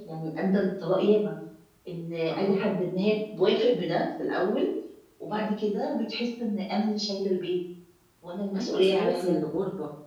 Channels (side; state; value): both; identical; correlation 1.00